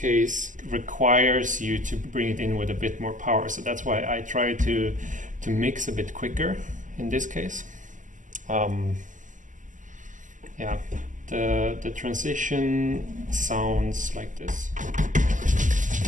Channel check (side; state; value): left; late; 0.37 ms